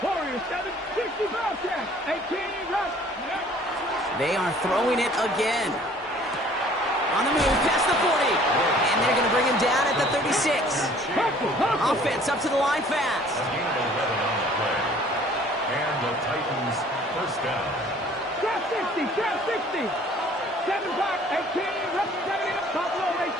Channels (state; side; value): normal; both; correlation 0.54